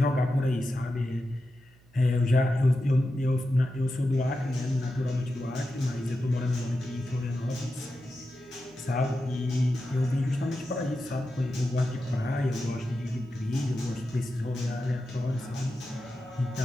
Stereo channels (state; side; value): noise; right; hum, 28 dB below the sound